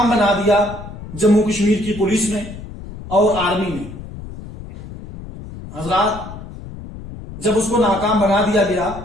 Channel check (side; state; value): left; noise; rumble, 13 dB below the sound